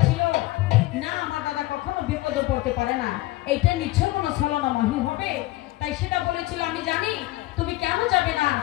না আমার দাদা কখনো বিপদে পড়তে পারে না, এইটা নিশ্চয় কোনো ছলনাময়ী হবে। তাই সীতা বলেছিল, আমি জানি তুমি কেন যাবে না,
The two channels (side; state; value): right; quieter; 18.4 dB